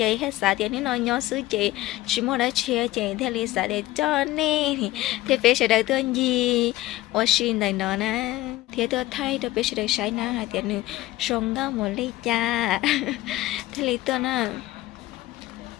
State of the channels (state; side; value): quieter; right; 17.1 dB